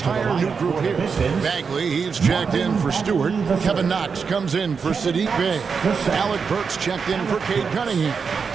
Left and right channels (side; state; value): left; quieter; 5.7 dB